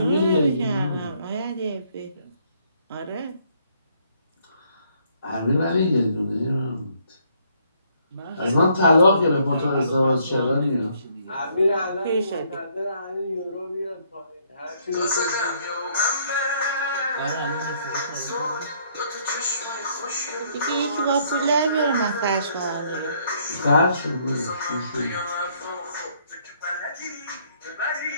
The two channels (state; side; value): inverted; both; correlation -0.67